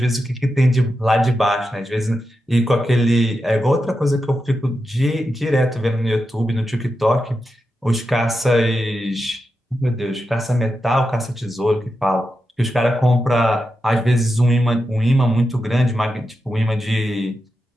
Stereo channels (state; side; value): normal; both; correlation 0.89